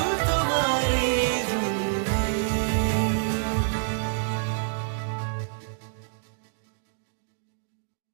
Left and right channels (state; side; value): silent; left; digital silence